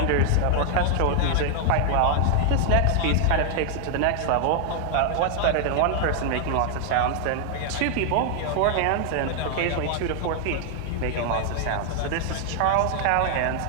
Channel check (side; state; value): both; different; correlation 0.00